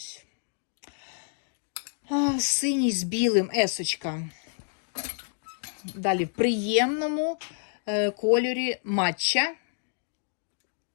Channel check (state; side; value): silent; right; digital silence